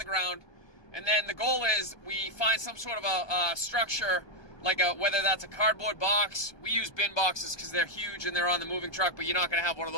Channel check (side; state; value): right; late; 1.2 ms